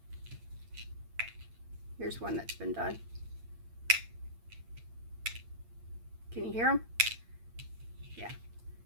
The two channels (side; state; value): left; late; 8.8 ms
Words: Here's one that's been done. Can you hear them? Yeah.